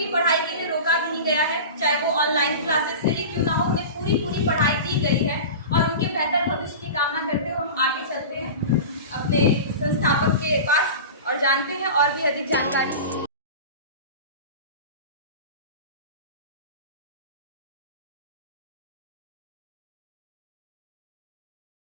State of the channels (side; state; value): both; inverted; correlation -0.31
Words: पढ़ाई के लिए रोका नहीं गया है, चाहे वो ऑनलाइन क्लासेस से ही क्यों ना हो, उन्हें पूरी पढ़ाई दी गई है और उनके बेहतर भविष्य की कामना करते हुए हम आगे चलते हैं अपने संस्थापक के पास और जानते हैं और भी अधिक जानकारी।